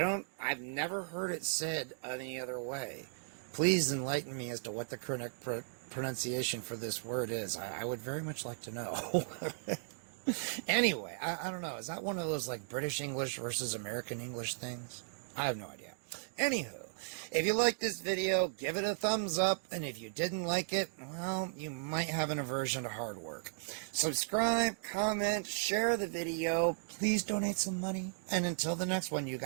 never heard it said any other way. Please enlighten me as to what the correct pronunciation for this word is. I would very much like to know. Anyway, I don't know. Is that one of those like British English versus American English things? I have no idea. Anywho, if you like this video, give it a thumbs up, and if you didn't like it, well, you might have an aversion to hard work. Subscribe, comment, share the video, please donate some money, and until the next one, you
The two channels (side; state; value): left; silent; digital silence